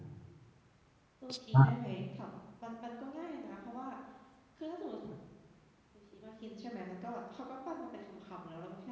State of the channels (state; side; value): identical; both; correlation 1.00